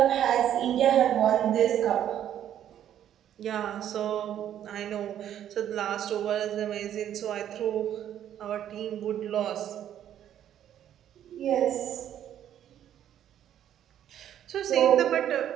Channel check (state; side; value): quieter; left; 10.6 dB